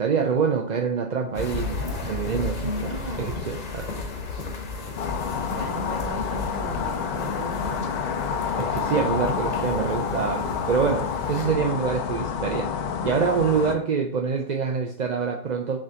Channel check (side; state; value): left; late; 2.0 ms